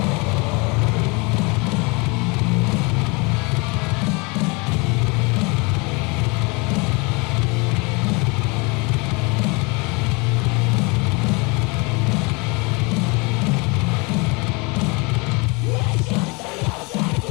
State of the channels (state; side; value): quieter; right; 28.8 dB